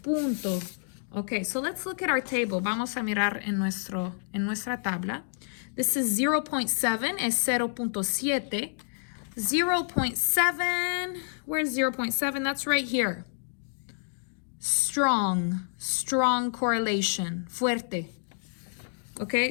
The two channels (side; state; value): right; silent; digital silence